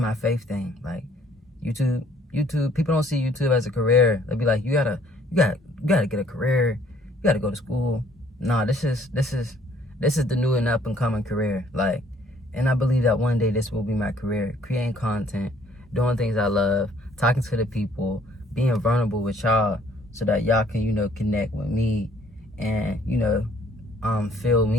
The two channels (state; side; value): normal; both; correlation 0.61